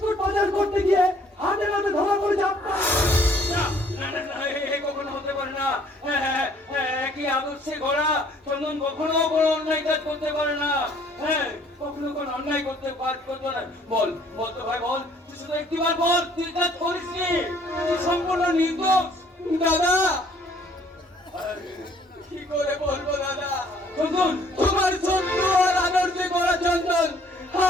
বাজার করতে গিয়ে হাতে হাতে ধরা পড়েছে আপনার। কখনো হতে পারে না। কি আদর্শে গড়া চন্দন কখনো কোনো অন্যায় কাজ করতে পারে না। হ্যাঁ, কখনো কোনো অন্যায় করতে না। বল তো ভাই, বল, তুই শুধু একটিবার বল, তুই কাজ করিস নি, তুই সম্পূর্ণ নির্দোষ। দাদা, কি করে বলবো দাদা? চন্দন, তোমার সত্য আর আদর্শে গড়া চন্দন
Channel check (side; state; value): both; normal; correlation 0.60